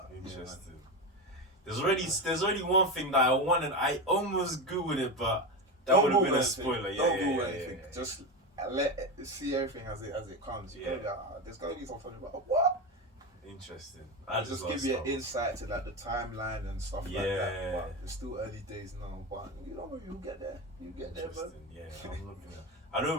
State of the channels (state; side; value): normal; both; correlation 0.18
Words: interesting. There's already one thing that I wanted. I almost googled it, but that would have been a spoiler. Don't Google anything. Just see everything as it comes. There's gotta be something about what. Interesting. Just give you an insight to like the timeline and stuff like that. But it's still early days now. But you'll get there. You get there, bro. Yeah, I'm looking at. I